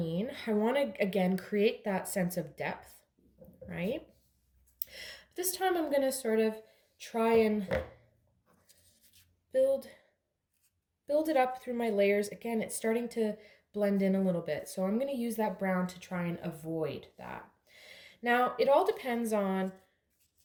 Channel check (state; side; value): identical; both; correlation 1.00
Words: I want to, again, create that sense of depth, right? This time I'm going to sort of try and build it up through my layers. Again, it's starting to blend in a little bit. So I'm going to use that brown to try and avoid that. Now, it all depends on